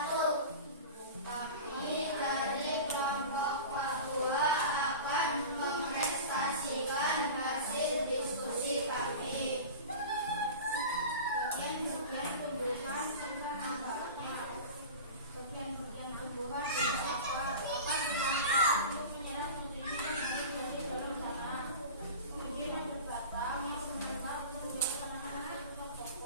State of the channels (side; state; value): both; inverted; correlation -0.33